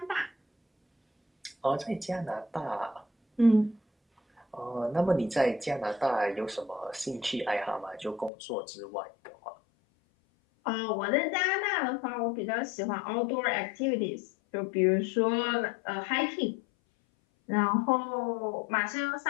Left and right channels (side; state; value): right; drops out; at 8.3 s